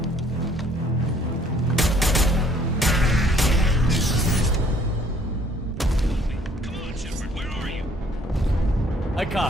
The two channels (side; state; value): both; normal; correlation 0.60